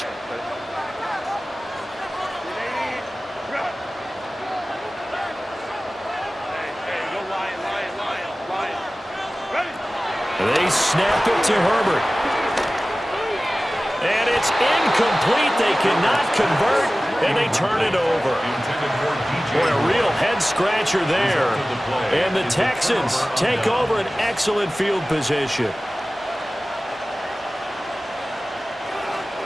They snap it to Herbert. And it's incomplete. They cannot convert, and they turn it over. Boy, a real head-scratcher there. And the Texans take over an excellent field position.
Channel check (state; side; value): normal; both; correlation 0.97